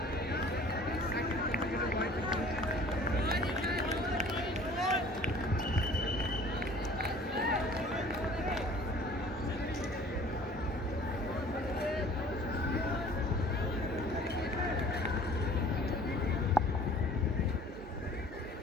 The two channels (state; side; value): normal; both; correlation 0.50